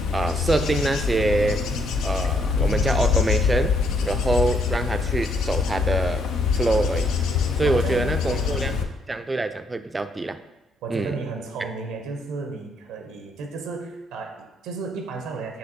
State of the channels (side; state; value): both; normal; correlation 0.70